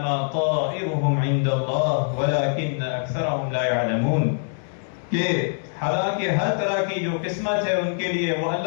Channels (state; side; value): silent; right; digital silence